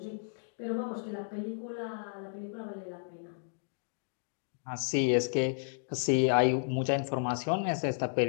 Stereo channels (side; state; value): right; silent; digital silence